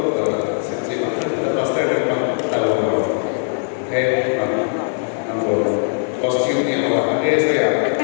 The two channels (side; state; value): right; silent; digital silence